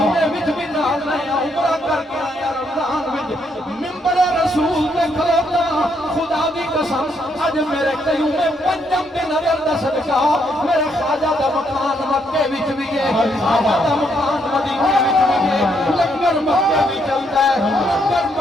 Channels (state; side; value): normal; both; correlation 0.74